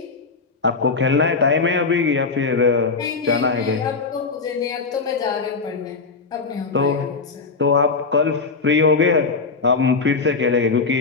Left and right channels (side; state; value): right; quieter; 4.4 dB